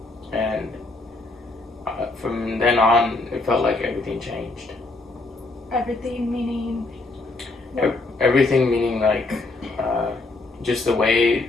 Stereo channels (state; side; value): quieter; right; 3.2 dB